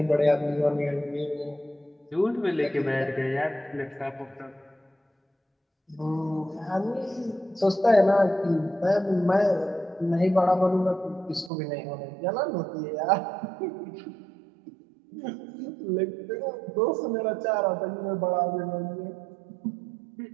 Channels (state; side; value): drops out; left; at 11.5 s